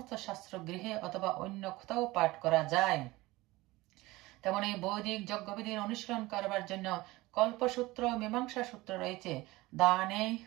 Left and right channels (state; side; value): quieter; left; 20.1 dB